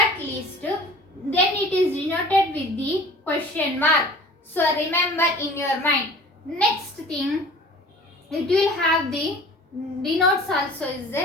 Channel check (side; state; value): both; normal; correlation 0.45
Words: list, then it is denoted with the question mark. So remember in your mind. Next thing, it will have the denotes also is